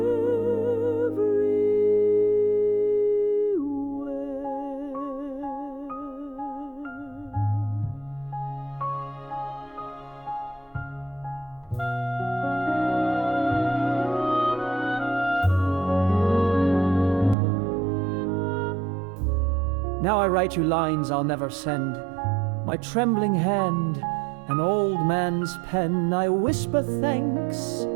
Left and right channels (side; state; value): left; drops out; at 17.4 s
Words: Now I write you lines I'll never send, My trembling hand, an old man's pen, I whisper thanks